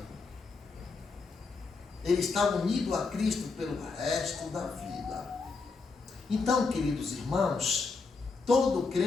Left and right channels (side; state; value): right; quieter; 4.3 dB